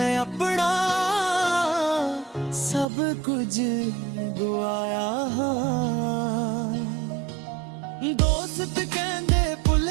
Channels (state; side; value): drops out; left; at 2.9 s